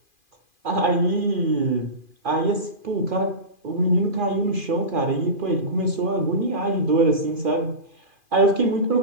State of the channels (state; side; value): late; left; 2.4 ms